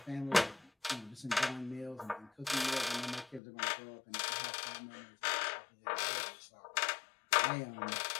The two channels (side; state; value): right; drops out; at 3.4 s